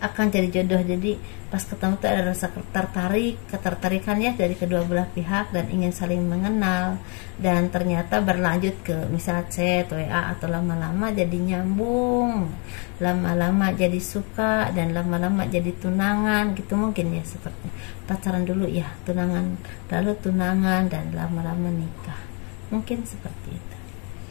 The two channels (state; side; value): quieter; right; 35.8 dB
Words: Jadi pas ketemu tuh ada rasa ketertarikan ya dari kedua belah pihak, dan ingin saling mengenal, dan ternyata berlanjut ke misal chat, WA, atau lama-lama jadi nyambung, lama-lama jadi suka, dan lama-lama jadi tunangan gitu mungkin ya. Seperti pacaran dulu ya, tunangan, lalu tunangan, dan lama-lama nikah, mungkin seperti itu.